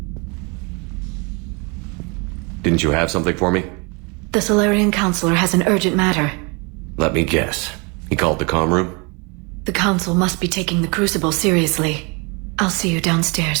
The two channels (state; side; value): quieter; left; 30.7 dB